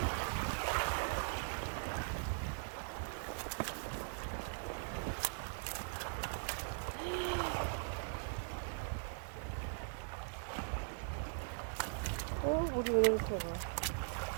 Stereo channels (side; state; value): left; silent; digital silence